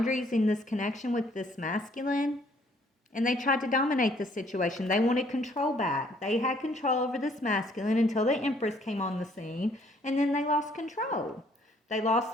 in this connection with this masculine. And they tried to dominate the situation. They wanted control back. They had control over this masculine until the Empress came on the scene, and then they lost control. They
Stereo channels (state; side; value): normal; both; correlation 0.63